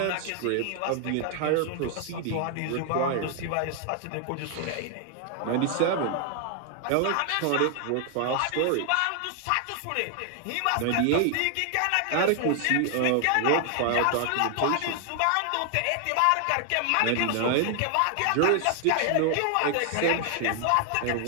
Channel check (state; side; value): different; both; correlation 0.00